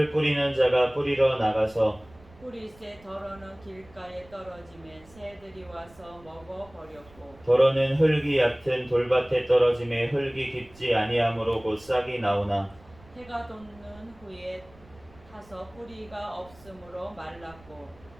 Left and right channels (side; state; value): right; noise; rumble, 25 dB below the sound